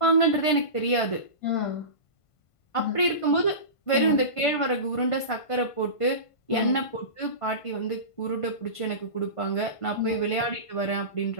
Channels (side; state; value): right; late; 1.5 ms